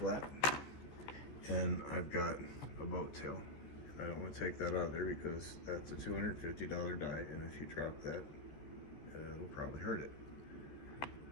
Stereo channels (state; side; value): late; right; 14 ms